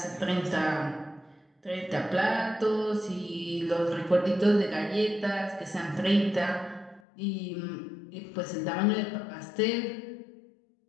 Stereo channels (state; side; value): drops out; right; at 7.0 s